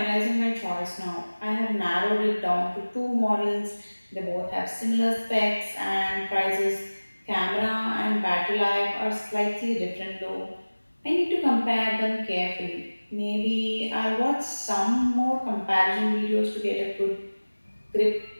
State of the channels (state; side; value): inverted; both; correlation -1.00